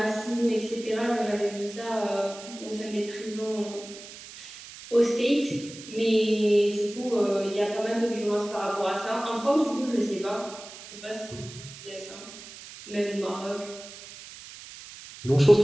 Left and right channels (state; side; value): noise; right; hiss, 15 dB below the sound